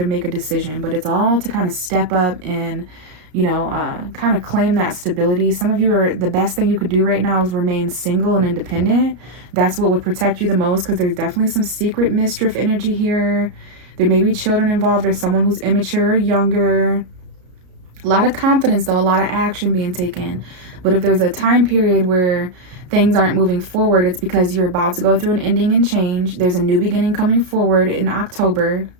make a decision, but it's all to kind of step up and, kind of claim that stability. Some of you the best thing you could do right now is remain single and independent. That's what would protect you the most, because there's definitely some secret mischief energy here. There may be children involved or someone who's immature or younger. A lot of confidence, though, a lot of action being taken. But if there's a time period where things aren't moving forward, it's because you're about to go through an ending and change. There's a new beginning coming forward in October.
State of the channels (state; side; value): late; left; 33 ms